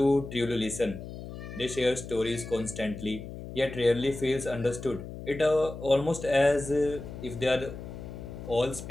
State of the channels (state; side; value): noise; left; hum, 11 dB below the sound